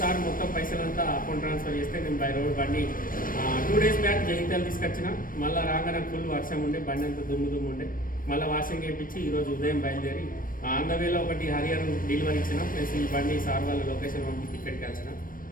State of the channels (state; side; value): late; right; 0.41 ms